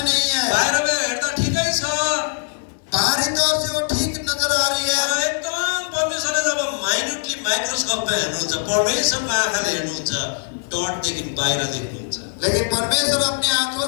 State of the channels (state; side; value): silent; right; digital silence